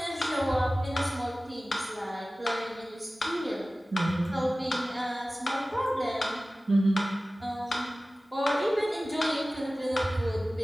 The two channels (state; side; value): normal; both; correlation 0.97